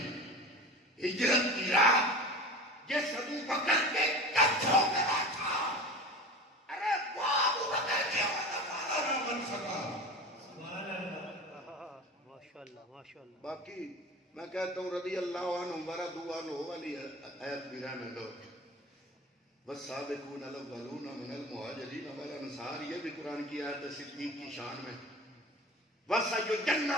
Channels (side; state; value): both; normal; correlation 0.33